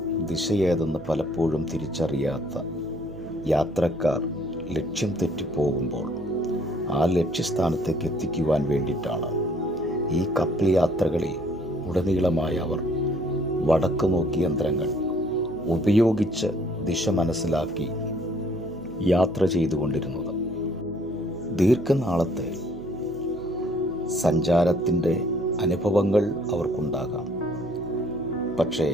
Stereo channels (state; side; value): noise; right; hum, 17 dB below the sound